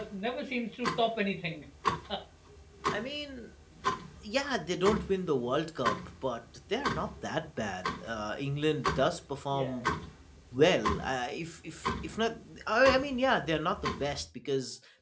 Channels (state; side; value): identical; both; correlation 1.00